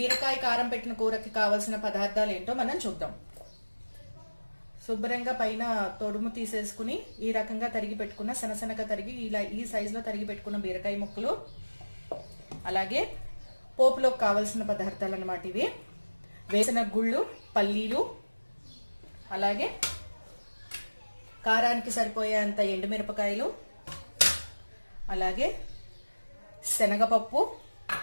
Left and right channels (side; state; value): both; inverted; correlation -1.00